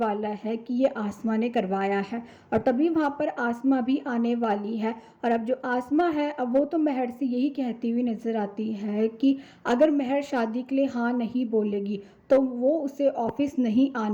है कि ये आसमा ने करवाया है। और तभी वहाँ पर आसमा भी आने वाली है। और अब जो आसमा है, अब वो तो महर से यही कहती हुई नज़र आती है कि अगर महर शादी के लिए हाँ नहीं बोलेगी तो वो उसे ऑफिस नहीं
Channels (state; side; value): identical; both; correlation 1.00